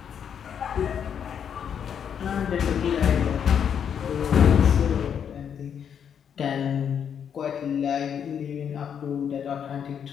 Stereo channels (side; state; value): right; quieter; 8.1 dB